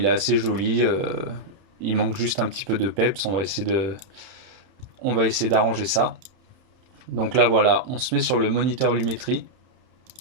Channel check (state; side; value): late; left; 31 ms